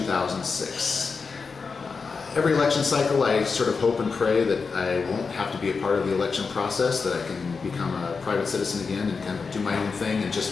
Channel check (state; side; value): quieter; right; 4.9 dB